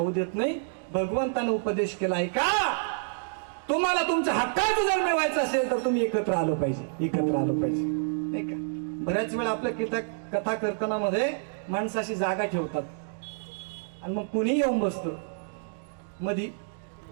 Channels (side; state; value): left; silent; digital silence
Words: देत नाही. भगवंतानं उपदेश केलाय का, तुम्हाला तुमच्या हक्काचं जर मिळवायचं असेल तर तुम्ही एकत्र आलं पाहिजे, एकत्र आलं पाहिजे नाही का. बऱ्याच वेळा आपल्या कथा कीर्तनामध्ये माणसाशी जागा ठेवतात आणि मग कुणी येऊन बसतो मधी,